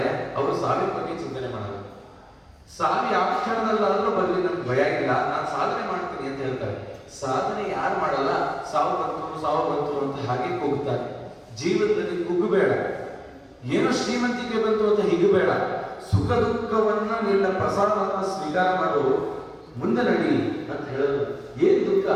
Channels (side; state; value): both; identical; correlation 1.00